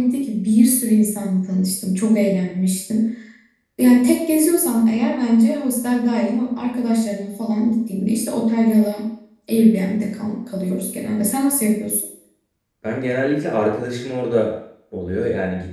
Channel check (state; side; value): identical; both; correlation 1.00